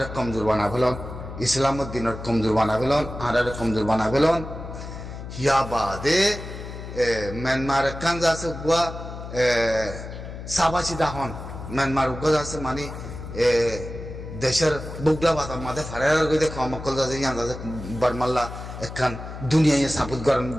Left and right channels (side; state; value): left; noise; hum, 10 dB below the sound